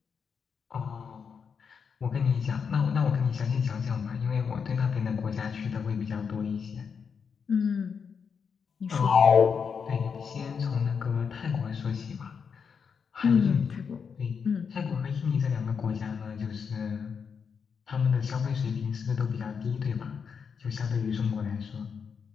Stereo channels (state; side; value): quieter; right; 6.3 dB